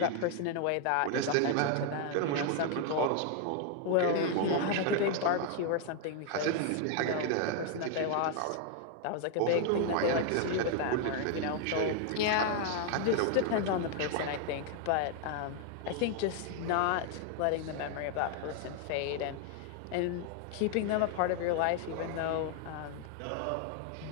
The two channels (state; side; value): different; both; correlation 0.00